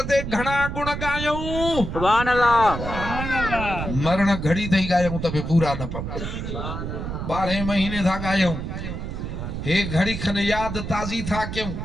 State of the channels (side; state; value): right; noise; rumble, 5 dB below the sound